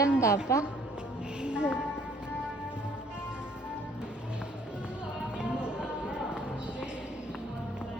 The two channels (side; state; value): both; normal; correlation 0.60